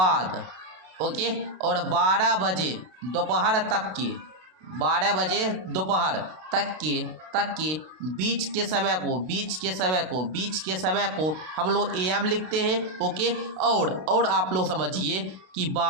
ओके, और 12 बजे दोपहर तक के 12 बजे दोपहर तक के बीच के समय को हम लोग AM लिखते हैं। ओके और आप लोग समझिए कि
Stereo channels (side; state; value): left; late; 32 ms